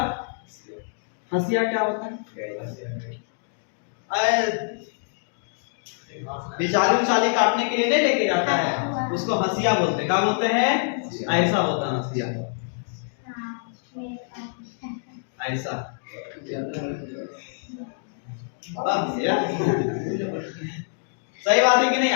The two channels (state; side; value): silent; right; digital silence